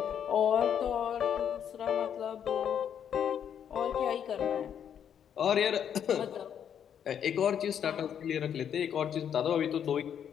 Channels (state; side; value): quieter; right; 8.7 dB